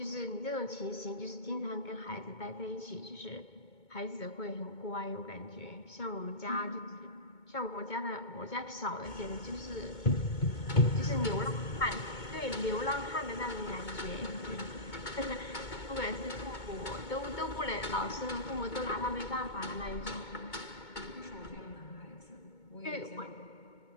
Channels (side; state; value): right; late; 2.2 ms